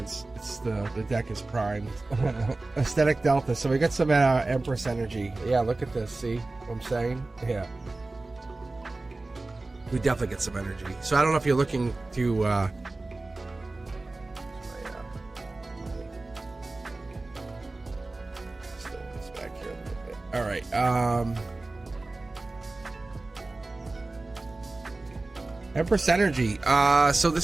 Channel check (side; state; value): left; quieter; 3.2 dB